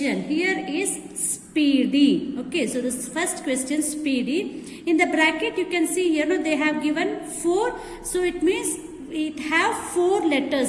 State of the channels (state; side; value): identical; both; correlation 1.00